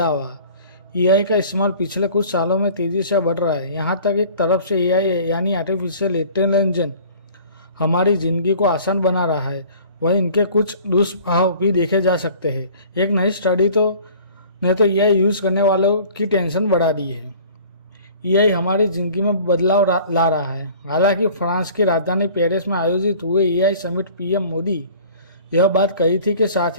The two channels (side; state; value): both; inverted; correlation -0.48